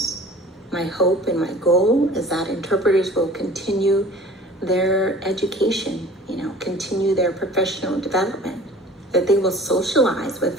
My hope and my goal is that interpreters will continue their education, continue their professional development, that they will socialize with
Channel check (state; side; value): normal; both; correlation 0.45